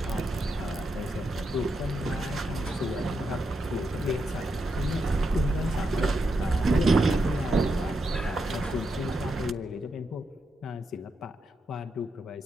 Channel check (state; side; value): normal; both; correlation 0.84